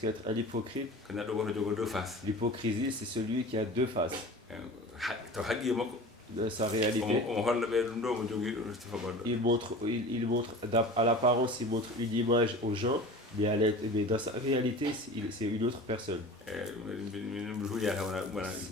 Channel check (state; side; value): normal; both; correlation 0.37